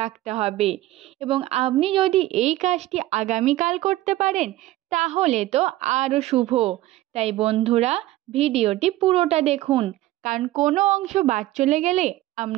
রাখতে হবে। এবং আপনি যদি এই কাজটি আগামীকাল করতে পারেন তাহলে তো আরও শুভ। তাই বন্ধুরা, ভিডিওটি পুরোটা দেখুন, কারণ কোনো অংশ বাদ চলে গেলে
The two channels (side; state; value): left; quieter; 16.1 dB